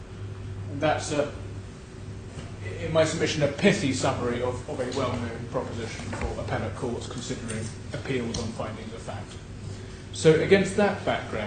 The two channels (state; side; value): identical; both; correlation 1.00